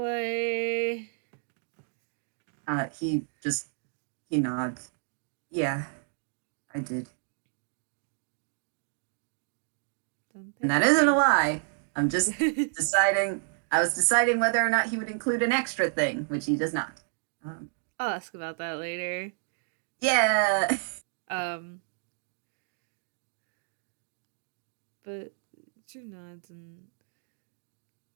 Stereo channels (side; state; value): left; silent; 58 dB below the other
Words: He nods. Yeah, I did. And Thank that isn't a you. lie. I'm just deciding. I was deciding whether or not he would include an extra thing, which he does not. Um, I'll ask about that later. yeah. Um, but Drew nods, and